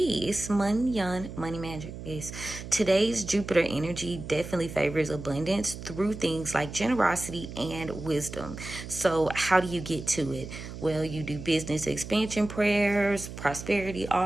It's money magic. Yes. Today's Jupiter energy definitely favors abundance through things like generosity and wisdom. So how do you get to it? Well, you do business expansion prayers, prosperity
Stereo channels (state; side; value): noise; right; hum, 11 dB below the sound